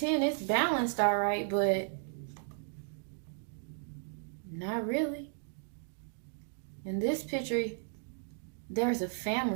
it's balanced all right, but not really. In this picture, there's a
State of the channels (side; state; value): left; silent; digital silence